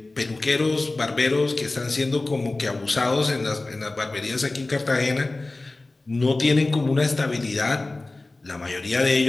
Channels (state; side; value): quieter; right; 3.1 dB